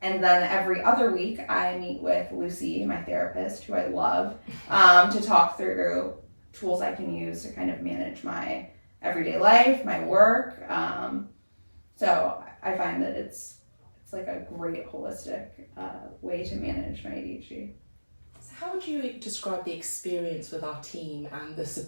then every other week I meet with Lucy, my therapist, who I love, to talk through tools I can use to kind of manage my everyday life, my work. So I find that it's like a great holistic way to manage my ADHD. So how would you describe the experience with our team and the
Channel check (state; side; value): inverted; both; correlation -1.00